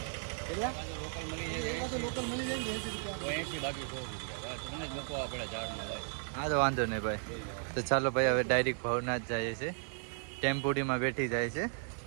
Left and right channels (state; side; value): silent; left; 54 dB below the other